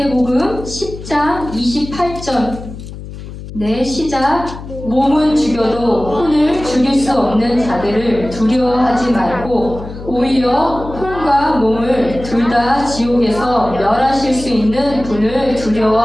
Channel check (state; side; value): noise; left; hum, 12 dB below the sound